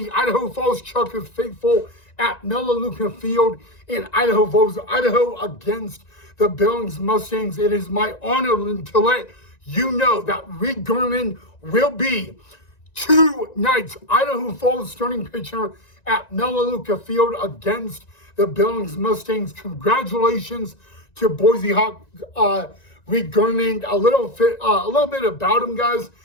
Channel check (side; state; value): right; late; 1.9 ms